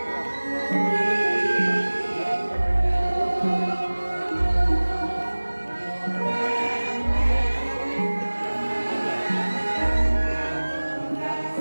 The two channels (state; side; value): inverted; both; correlation -1.00